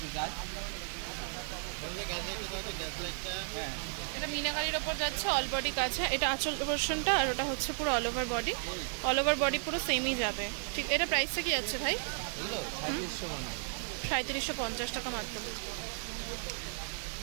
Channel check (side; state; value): left; silent; 55 dB below the other